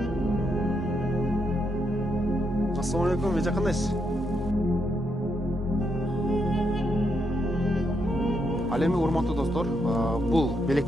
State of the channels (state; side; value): normal; both; correlation 0.79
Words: Assalamu alaikum, эже кандайсыз? Ал эми урматтуу достор, бул